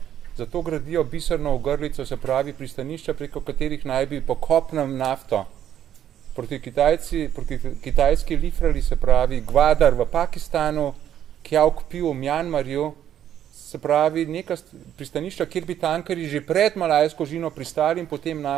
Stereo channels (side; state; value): left; quieter; 10.4 dB